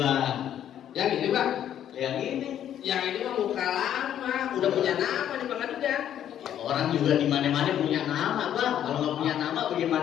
Yang ini bang. Yang ini. Yang ini mah muka lama, udah punya nama di bang juga. Orang juga di mana-mana punya nama bang. Kalau nggak punya nama,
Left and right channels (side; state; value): right; quieter; 10.5 dB